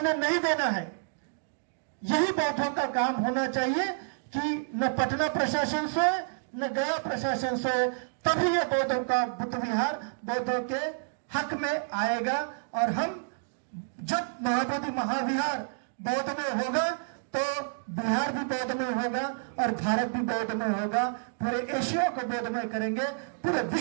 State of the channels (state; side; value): silent; left; digital silence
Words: नहीं देना है। यही बौद्धों का काम होना चाहिए कि न पटना प्रशासन सोए न गया प्रशासन सोए, तभी ये बौद्धों का बुद्ध विहार बौद्धों के हक में आएगा। और हम जब महाबोधि महाविहार बौद्धमय होगा तो बिहार भी बौद्धमय होगा और भारत भी बौद्धमय होगा। पूरे एशिया को बौद्धमय करेंगे, पूरे